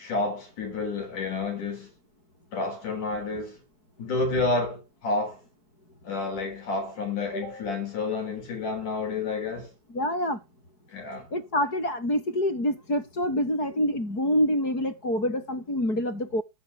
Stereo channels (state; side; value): late; right; 4.7 ms